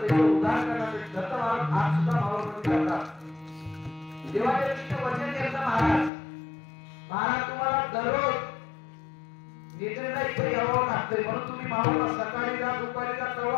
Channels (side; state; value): right; drops out; at 6.1 s